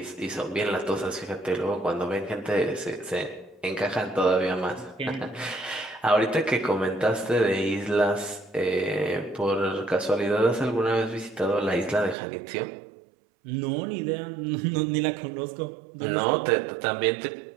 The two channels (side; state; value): left; drops out; at 12.2 s